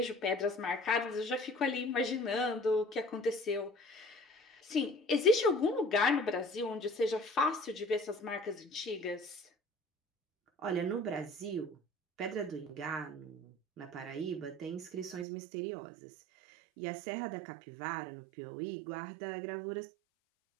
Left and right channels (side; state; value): left; drops out; at 15.2 s